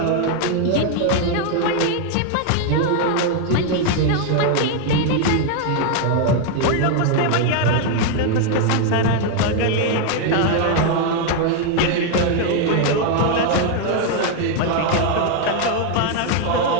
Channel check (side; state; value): both; different; correlation 0.00